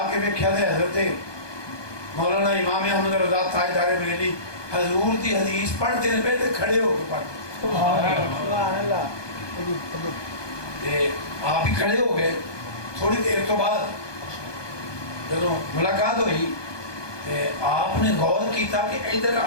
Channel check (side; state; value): right; late; 1.2 ms